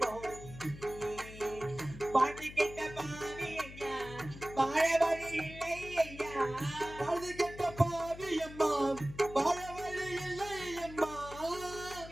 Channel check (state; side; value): noise; left; hum, 14 dB below the sound